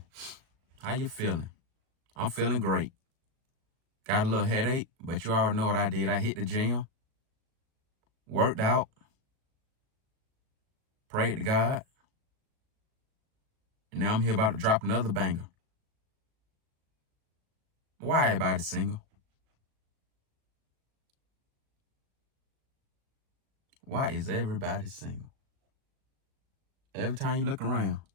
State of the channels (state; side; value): late; left; 37 ms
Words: How you feeling? I'm feeling great. Got a little headache, but you already know what I did. I hit the gym, worked out, prayed to God, and now I'm here about to drop another banger. Why everybody single? Why is everybody single? Every time you look around,